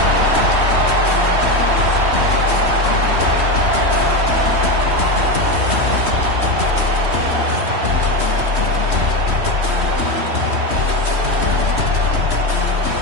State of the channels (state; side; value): late; left; 3.1 ms